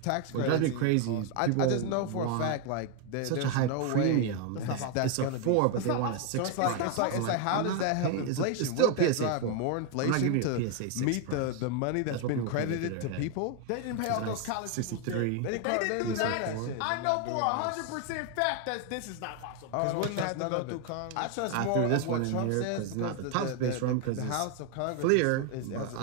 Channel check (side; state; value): both; different; correlation 0.01